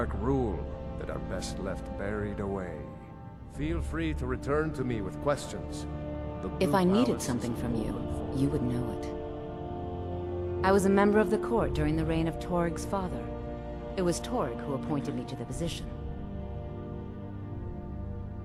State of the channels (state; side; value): identical; both; correlation 1.00